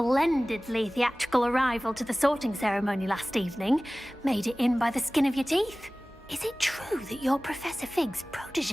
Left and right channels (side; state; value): both; normal; correlation 0.98